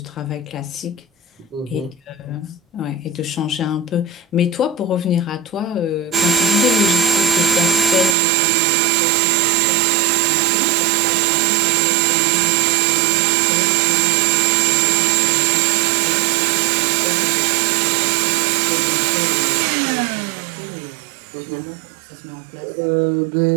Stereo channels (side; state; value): left; drops out; at 8.2 s